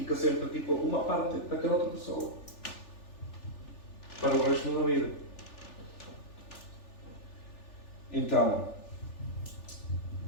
sempre tipo uma parte daquela outra pessoa para o resto da vida. Então,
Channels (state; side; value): late; right; 3.4 ms